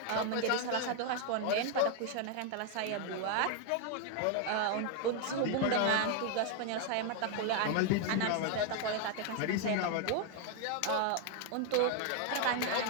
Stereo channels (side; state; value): both; different; correlation 0.00